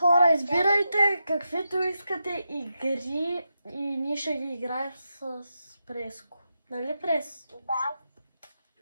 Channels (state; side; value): inverted; both; correlation -0.87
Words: избирайте каквито искате игри и ние ще ги играем с Преско. Нали, Прес? Да.